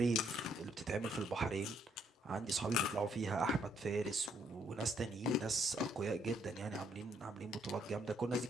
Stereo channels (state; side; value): normal; both; correlation 0.70